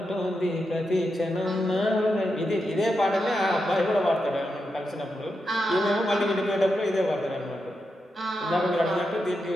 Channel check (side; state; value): both; normal; correlation 0.86